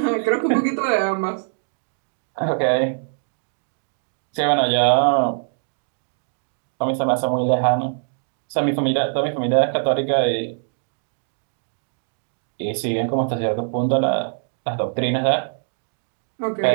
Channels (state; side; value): silent; left; digital silence